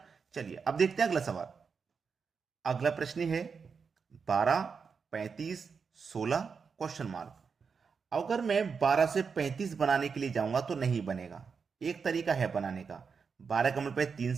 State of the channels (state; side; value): quieter; left; 5.6 dB